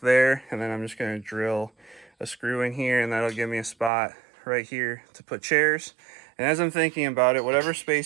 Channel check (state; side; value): drops out; left; at 3.9 s